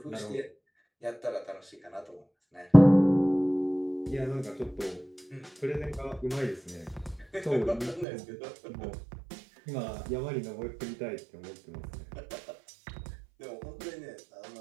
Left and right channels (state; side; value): drops out; left; at 8.1 s